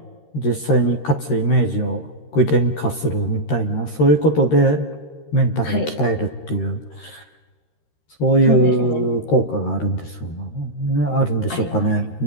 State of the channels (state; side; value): late; right; 13 ms